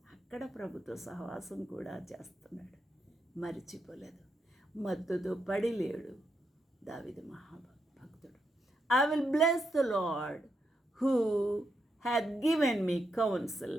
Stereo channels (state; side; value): normal; both; correlation 0.82